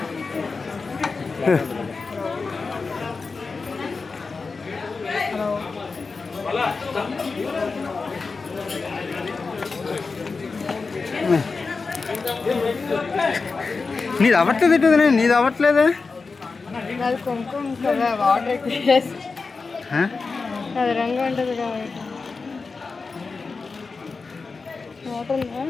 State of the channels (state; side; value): quieter; right; 4.4 dB